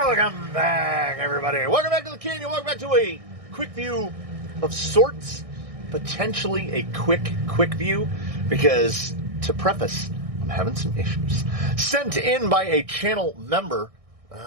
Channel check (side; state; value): left; late; 1.6 ms